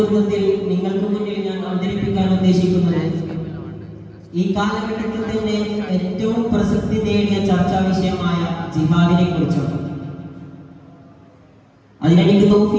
നിങ്ങൾക്ക് മുന്നിൽ ഞാൻ അവതരിപ്പിക്കാൻ ഉദ്ദേശിക്കുന്നത് ഈ കാലഘട്ടത്തിൽ തന്നെ ഏറ്റവും പ്രസക്തി നേടിയ ചർച്ചാ വിഷയമായ ജിഹാദിനെ കുറിച്ചാണ്. അതിനെനിക്ക്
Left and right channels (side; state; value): both; identical; correlation 1.00